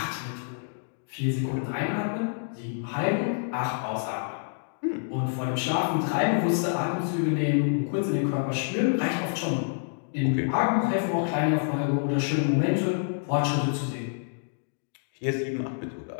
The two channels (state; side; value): silent; right; digital silence